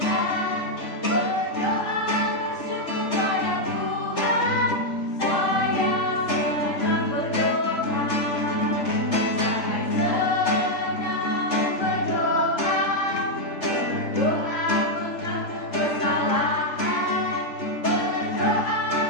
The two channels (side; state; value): right; late; 3.3 ms